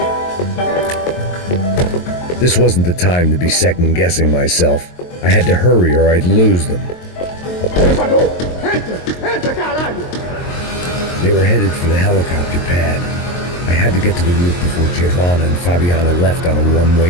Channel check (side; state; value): right; late; 23 ms